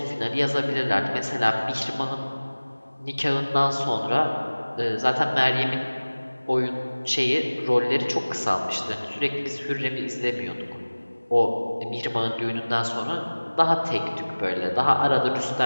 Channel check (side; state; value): both; inverted; correlation -1.00